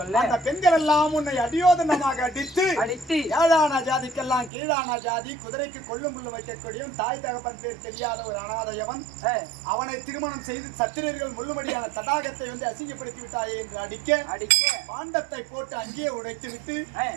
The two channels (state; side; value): drops out; left; at 4.5 s